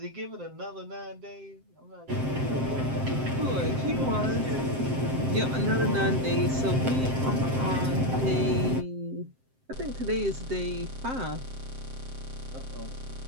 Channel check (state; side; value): late; left; 7.7 ms